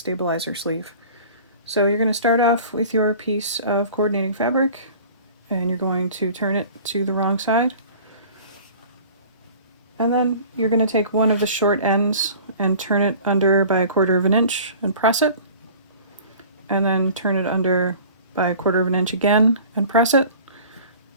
sleeve. So you're going to start off with your piece of coordinating fabric, and you're going to turn it to the wrong side. And then you're going to take one of the short ends and turn it under by 1/4 inch and press it. And then turn it under by 1/4 inch again and press it.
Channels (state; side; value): inverted; both; correlation -0.44